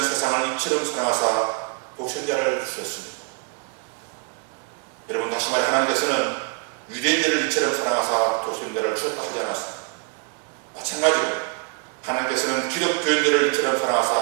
세상을 이처럼 사랑하사 독생자를 주셨습니다. 여러분, 다시 말해 하나님께서는 유대인들을 이처럼 사랑하사 독생자를 주셨다 하지 않았습니다. 마찬가지로 하나님께서는 기독교인들을 이처럼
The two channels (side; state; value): left; quieter; 33.4 dB